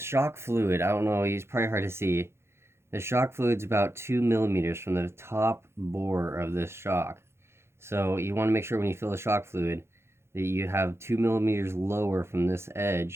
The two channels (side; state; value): left; late; 0.12 ms